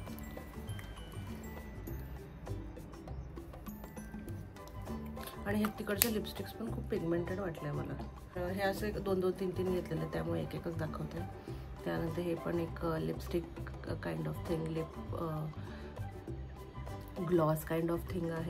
आणि हे तिकडचे लिपस्टिक्स पण खूप पिगमेंटेड वाटले मला. हे असे 2-2, 3-3 घेतलेले, त्यामुळे एक एकच दाखवते. त्यानंतर हे पण एक lipstick kind of thing, lip gloss kind of thing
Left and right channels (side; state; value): both; identical; correlation 1.00